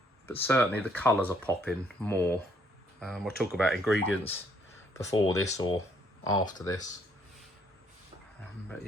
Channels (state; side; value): normal; both; correlation 0.67